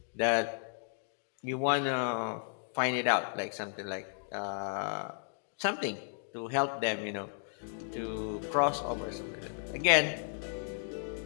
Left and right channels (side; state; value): right; silent; digital silence